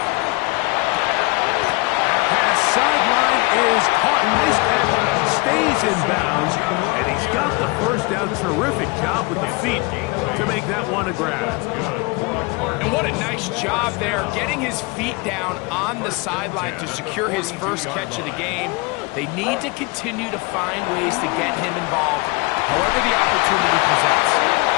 Pass sideline is caught. Nice catch. Stays in bounds. And he's got the first down. Terrific job with the feet to make that one a grab. And what a nice job there, getting his feet down on the sideline to secure his first catch of the game. They need to continue to find ways to get him involved, however the opportunity presents.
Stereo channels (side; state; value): right; quieter; 26.6 dB